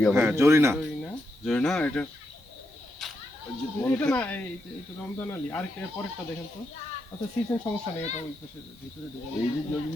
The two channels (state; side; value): normal; both; correlation 0.83